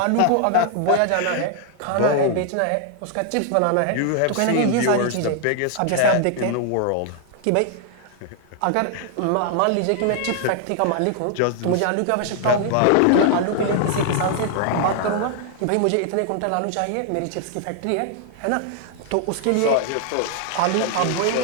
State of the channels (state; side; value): different; both; correlation 0.00